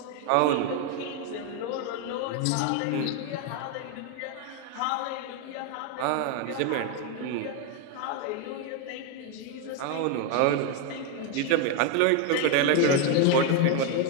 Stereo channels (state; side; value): different; both; correlation 0.01